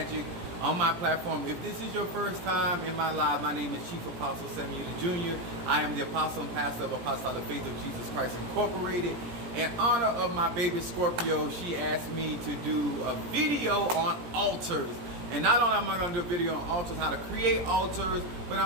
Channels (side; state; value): left; late; 17 ms